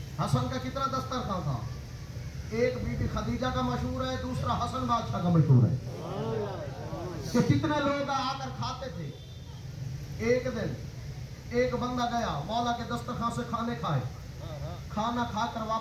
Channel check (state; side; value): identical; both; correlation 1.00